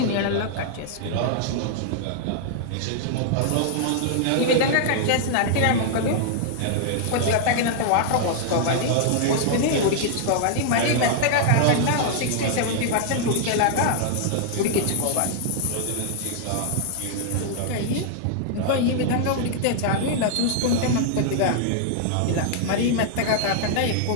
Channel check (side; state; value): both; different; correlation -0.01